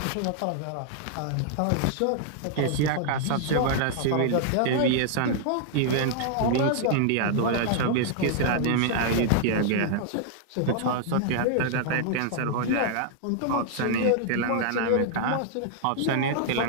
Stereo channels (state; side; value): different; both; correlation -0.01